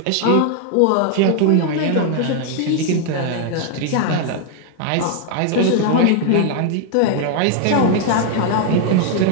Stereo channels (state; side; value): different; both; correlation 0.00